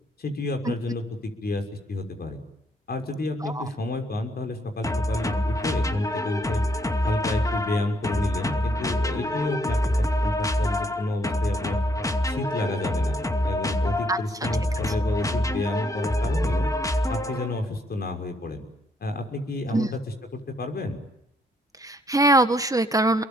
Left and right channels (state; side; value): normal; both; correlation 0.71